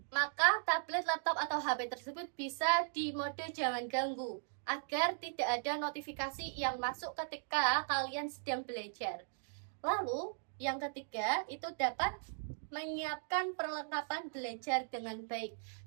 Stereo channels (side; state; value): left; silent; digital silence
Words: maka tablet, laptop, atau HP tersebut bisa di mode jangan ganggu, agar tidak ada notifikasi yang masuk ketika kalian sedang belajar. Lalu, yang ketiga, itu dapat menyiapkan perlengkapan belajar dengan baik.